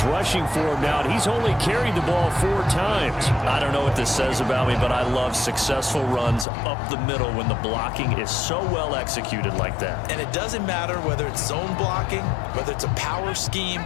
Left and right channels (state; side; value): drops out; right; at 6.5 s